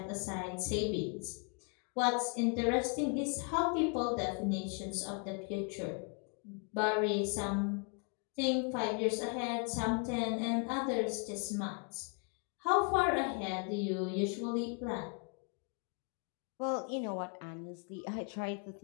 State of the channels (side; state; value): right; quieter; 36.9 dB